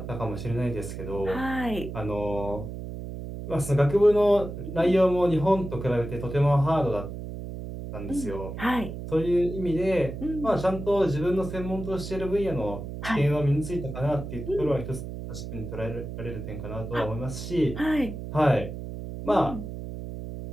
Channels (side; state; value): right; noise; hum, 8 dB below the sound